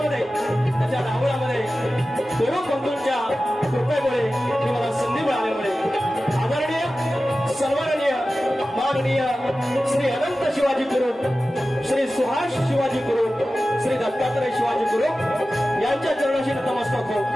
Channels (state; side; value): normal; both; correlation 0.95